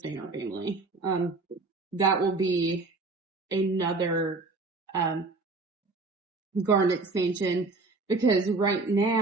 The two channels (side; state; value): left; quieter; 3.6 dB